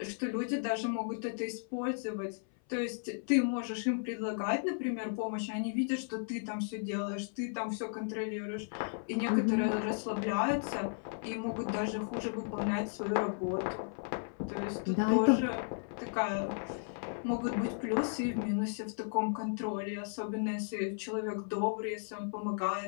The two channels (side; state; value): right; silent; 55 dB below the other